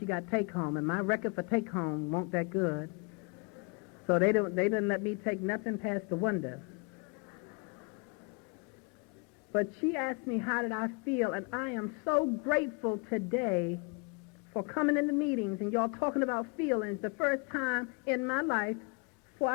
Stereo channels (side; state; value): right; quieter; 32.2 dB